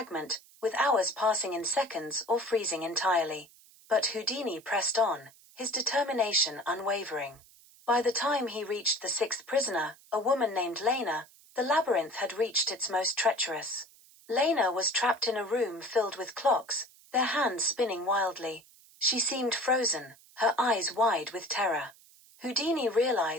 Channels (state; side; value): noise; right; hiss, 26 dB below the sound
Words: with hours passing in seconds or freezing entirely. But Houdini pressed on, his determination unwavering. By the time he reached the sixth prisoner, a woman named Lena, the labyrinth had reached its most treacherous. Lena was trapped in a room filled with clocks, their hands spinning wildly. She seemed frozen, her eyes wide with terror. Houdini